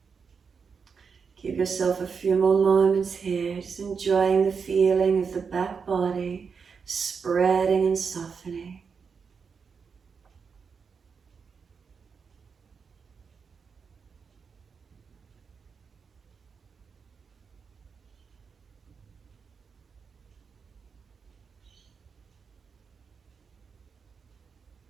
Give yourself a few more moments here, just enjoying the feeling of the back body spreading and softening.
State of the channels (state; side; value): quieter; left; 5.8 dB